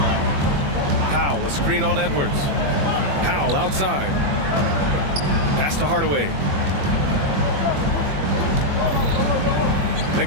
Powell, a screen on Edwards. Powell outside. Pass to Hardaway.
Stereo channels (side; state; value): left; late; 21 ms